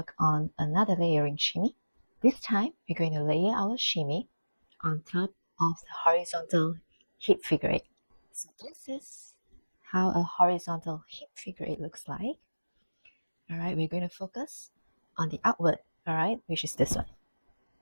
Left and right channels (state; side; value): inverted; both; correlation -1.00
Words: on another layering shimmy. This time we're going to layer our shimmy on top of the horizontal hip figure 8. So this is how a horizontal hip figure 8 looks like. Alright, we're going to focus on the outward, alright, which is this one.